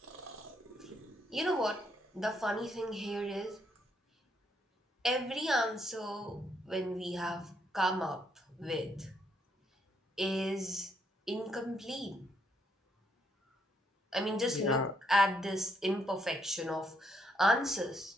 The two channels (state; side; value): normal; both; correlation 0.73